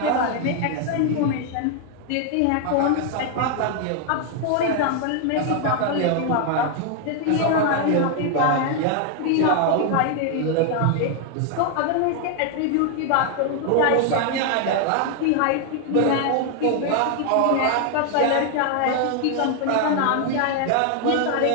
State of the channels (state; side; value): different; both; correlation 0.00